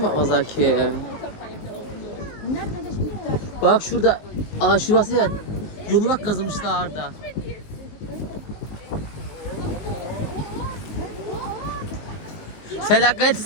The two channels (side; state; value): right; late; 19 ms